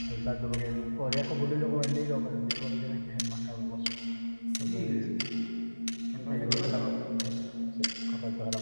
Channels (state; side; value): inverted; both; correlation -1.00